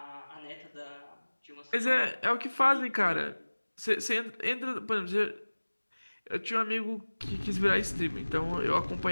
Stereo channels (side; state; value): both; inverted; correlation -1.00